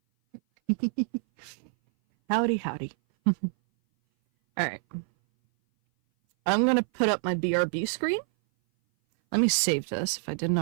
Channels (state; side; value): silent; left; 58 dB below the other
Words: Howdy, howdy. All right. I'm going to put up my BRB screen. Let me save this. If I didn't